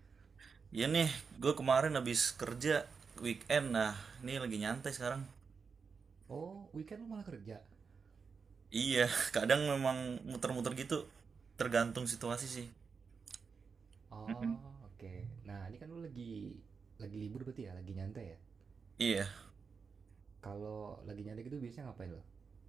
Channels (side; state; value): left; quieter; 5.4 dB